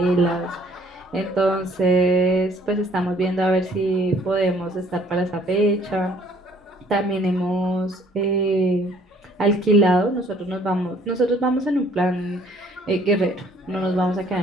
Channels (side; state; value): both; normal; correlation 0.60